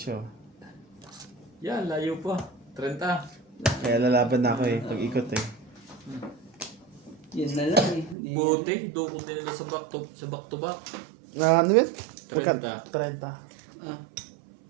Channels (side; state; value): left; drops out; at 8.2 s